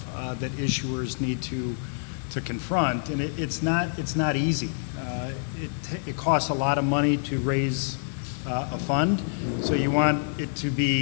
that issuers need to confront, and it's not easy. It costs a lot of money to raise a fund, so you want it to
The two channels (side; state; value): right; silent; 60 dB below the other